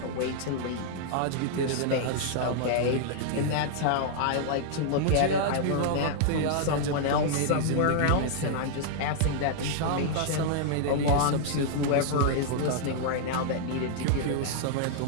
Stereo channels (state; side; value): different; both; correlation -0.01